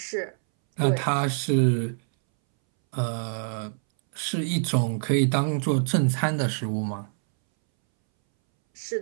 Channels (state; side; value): silent; left; 61 dB below the other